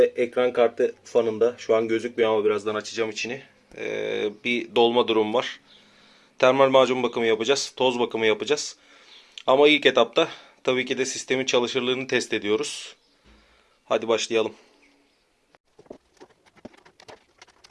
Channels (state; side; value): identical; both; correlation 1.00